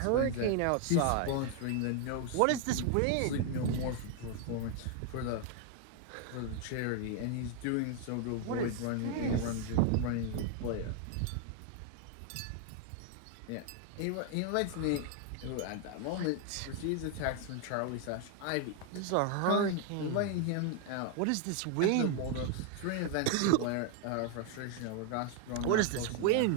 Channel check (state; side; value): different; both; correlation 0.01